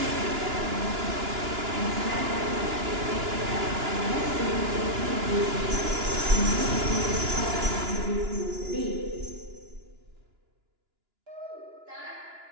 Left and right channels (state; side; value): late; left; 2.9 ms